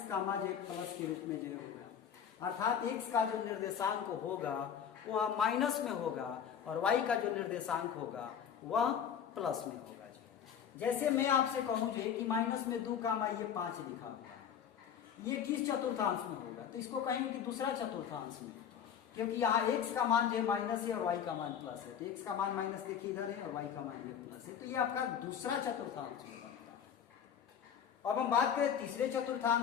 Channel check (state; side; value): quieter; right; 8.3 dB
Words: का मान जो है प्लस के रूप में जो है होगा, अर्थात x का जो निर्देशांक होगा वह माइनस में होगा और y का जो निर्देशांक होगा वह प्लस में होगा। जैसे मैं आपसे कहूं जो कि माइनस में 2 का मान ये 5 लिखा हुआ, ये किस चतुर्थांश में होगा? तो इसको कहेंगे कि दूसरा चतुर्थांश में, क्योंकि यहाँ x का मान जो है माइनस है और y का मान प्लस है। तो x का मान माइनस देखिए इधर है और y का मान ये प्लस है, तो ये आपका दूसरा चतुर्थांश में बनता है। अब हम बात करें तीसरे